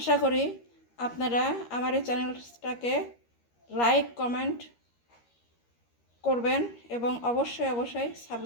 করি আপনারা আমার এই চ্যানেলটাকে লাইক কমেন্ট করবেন এবং অবশ্যই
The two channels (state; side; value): late; right; 13 ms